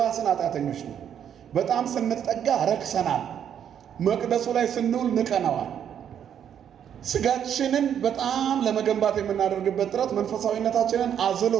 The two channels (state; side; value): quieter; left; 9.0 dB